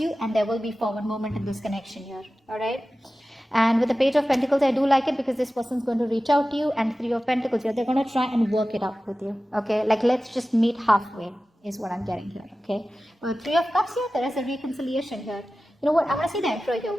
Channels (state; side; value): normal; both; correlation 0.95